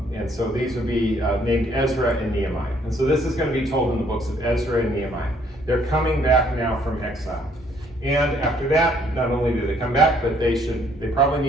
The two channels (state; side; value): normal; both; correlation 0.65